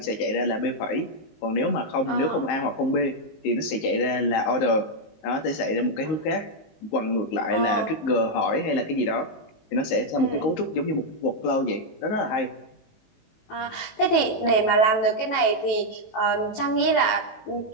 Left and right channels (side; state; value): right; late; 18 ms